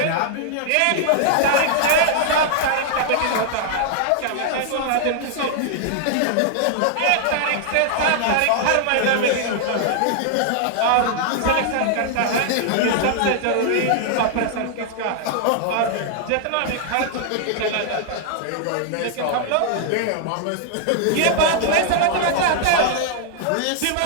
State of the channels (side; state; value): both; different; correlation 0.00